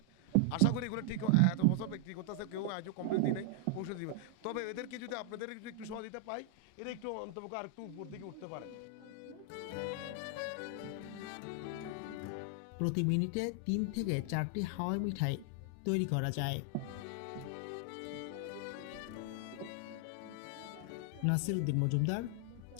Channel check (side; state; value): both; different; correlation 0.00